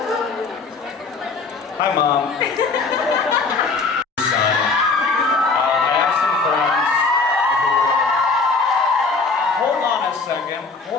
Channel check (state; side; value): quieter; right; 4.3 dB